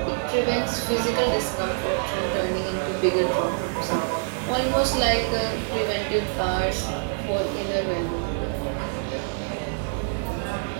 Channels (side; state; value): left; silent; 61 dB below the other